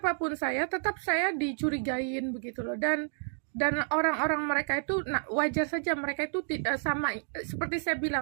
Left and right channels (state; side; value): silent; left; 58 dB below the other